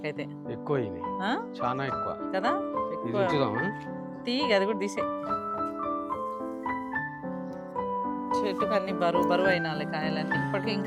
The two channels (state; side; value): identical; both; correlation 1.00